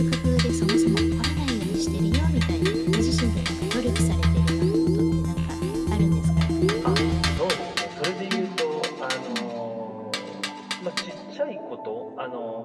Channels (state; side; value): identical; both; correlation 1.00